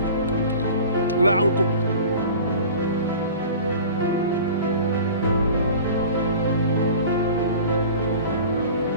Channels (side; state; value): both; inverted; correlation -0.40